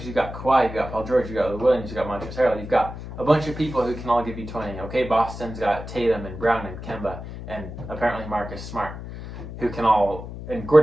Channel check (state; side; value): noise; left; hum, 10 dB below the sound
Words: you got Kawhi, you got Paul George, you got Lou Williams, you got Montrezl Harrell, you've got a bunch of people who can all give you 20. Okay, Boston's got Tatum and Brown and Kemba and apparently Marcus Smart, who can all... And